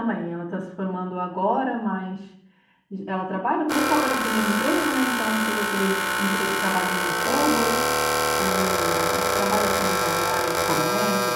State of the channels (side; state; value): both; identical; correlation 1.00